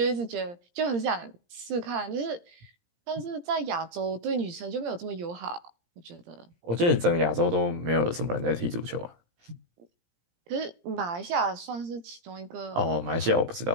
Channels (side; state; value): left; late; 17 ms